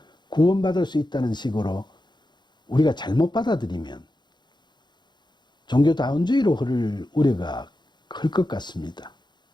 구원받을 수 있다는 식으로 우리가 잘못 받아들이면 종교다운주의로 흐를 우려가 클 것 같습니다.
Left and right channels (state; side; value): late; right; 0.21 ms